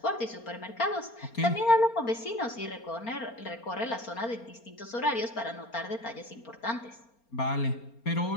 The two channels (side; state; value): right; late; 4.3 ms